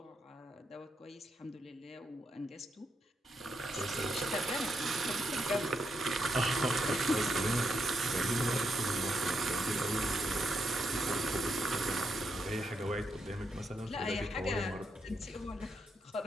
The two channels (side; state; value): both; normal; correlation 0.81